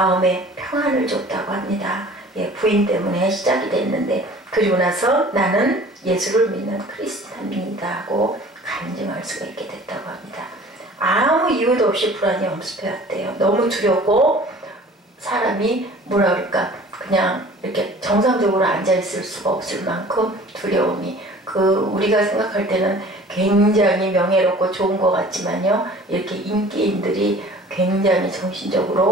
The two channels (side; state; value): both; normal; correlation 0.46